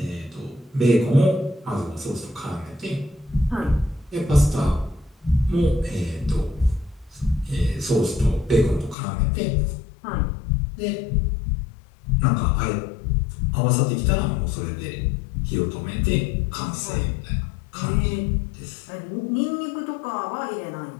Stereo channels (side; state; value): right; drops out; at 9.0 s